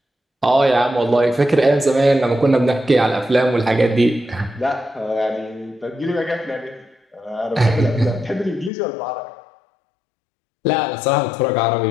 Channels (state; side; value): drops out; right; at 8.7 s